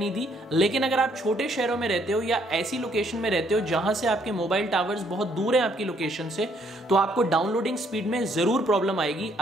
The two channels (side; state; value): both; normal; correlation 0.68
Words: दी, लेकिन अगर आप छोटे शहरों में रहते हो या ऐसी लोकेशन में रहते हो जहां से आपके मोबाइल टावर्स बहुत दूर हैं आपकी लोकेशन से, तो आपको डाउनलोडिंग स्पीड में जरूर प्रॉब्लम आएगी